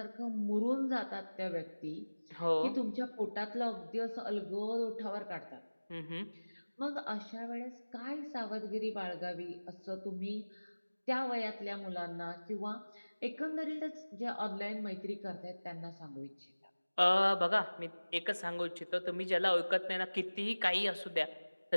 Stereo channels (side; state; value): both; inverted; correlation -1.00